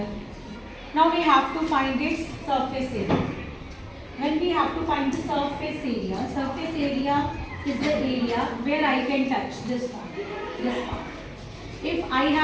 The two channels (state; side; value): identical; both; correlation 1.00